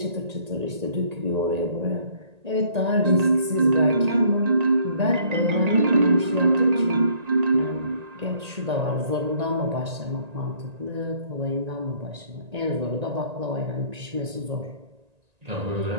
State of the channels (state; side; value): late; left; 1.9 ms